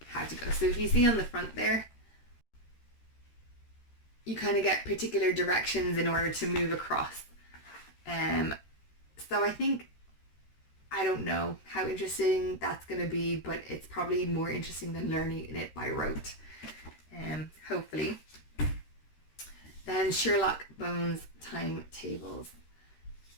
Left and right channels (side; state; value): right; late; 13 ms